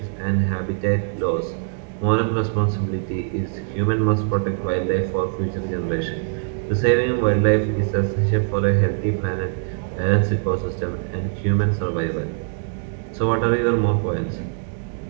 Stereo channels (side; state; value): left; silent; digital silence